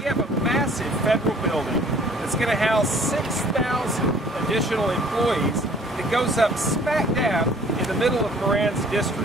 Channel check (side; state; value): both; normal; correlation 0.54